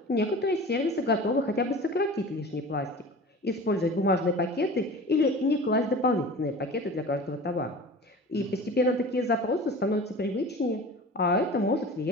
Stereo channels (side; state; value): both; normal; correlation 0.38